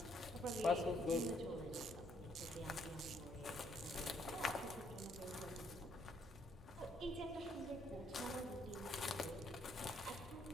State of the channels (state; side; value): normal; both; correlation 0.69